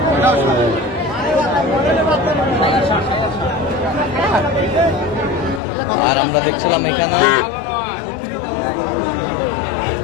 আর আমরা দেখছিলাম এখানে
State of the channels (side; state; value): right; drops out; at 5.6 s